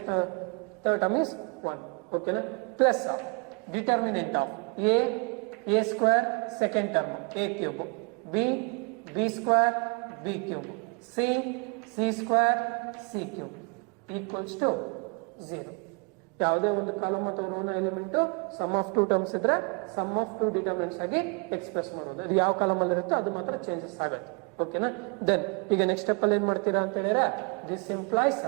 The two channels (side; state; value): left; quieter; 33.5 dB